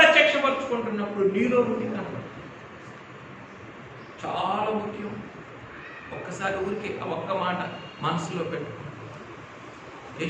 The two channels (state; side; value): identical; both; correlation 1.00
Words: నీలో ఉండి కనపడు. చాలా ముఖ్యం. ఒక్కసారి ఊరికి ఒక్క మాట మనసులో పెట్టుకో.